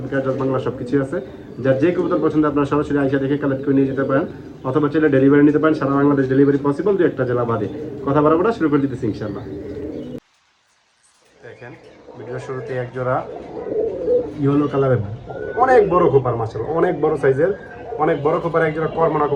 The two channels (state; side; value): identical; both; correlation 1.00